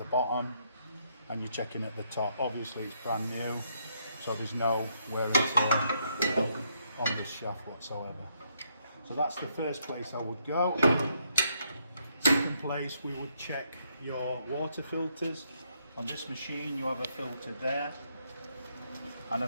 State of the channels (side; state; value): both; inverted; correlation -0.74